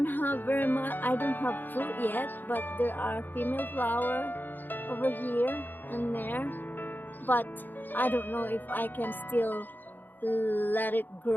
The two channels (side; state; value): right; late; 0.089 ms